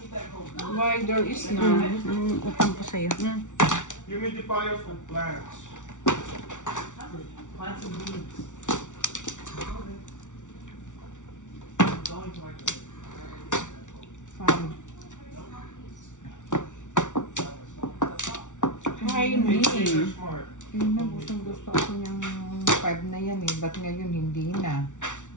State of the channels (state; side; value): late; right; 0.86 ms